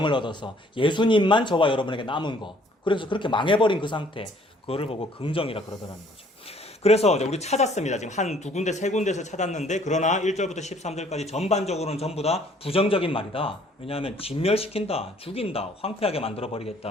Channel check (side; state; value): both; normal; correlation 0.60